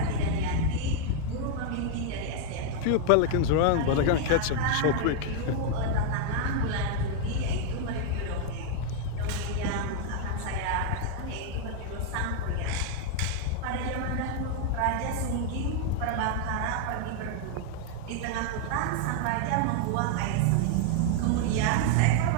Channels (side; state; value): both; different; correlation 0.00